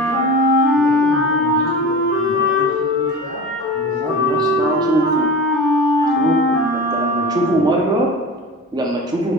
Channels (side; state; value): both; normal; correlation 0.32